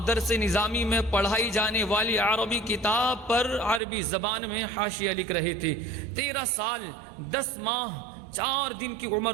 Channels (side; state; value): left; drops out; at 3.8 s